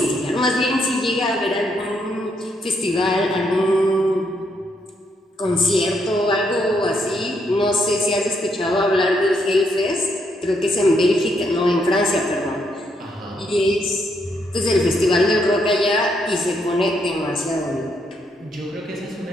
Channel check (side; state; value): both; normal; correlation 0.76